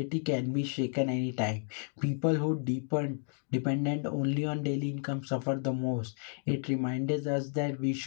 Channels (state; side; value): silent; right; 56 dB below the other